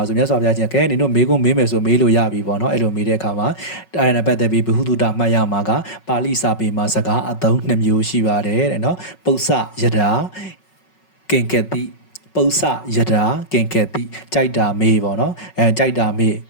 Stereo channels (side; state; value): right; late; 5.4 ms